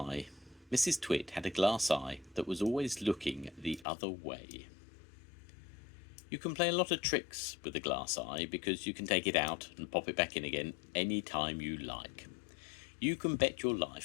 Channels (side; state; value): right; drops out; at 3.9 s